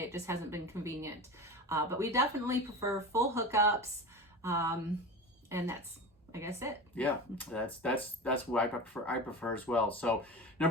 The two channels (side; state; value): both; normal; correlation 0.30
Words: It just hasn't been convenient. But we definitely prefer full hookups. And that's, I guess, it. Yeah, that's what I prefer as well. So